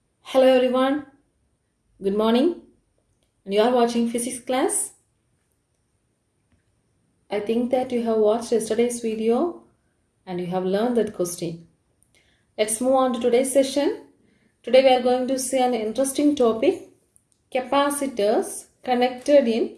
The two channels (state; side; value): identical; both; correlation 1.00